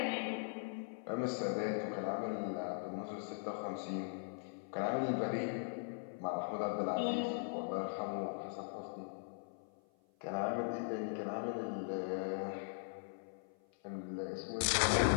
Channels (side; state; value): right; silent; 51 dB below the other